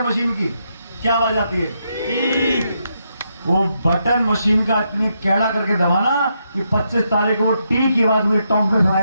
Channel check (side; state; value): both; inverted; correlation -0.80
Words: मशीन की क्या आवाज आती है? वो बटन मशीन का इतनी कैड़ा करके दबाना कि 25 तारीख को वो टी की आवाज मुझे टोंक में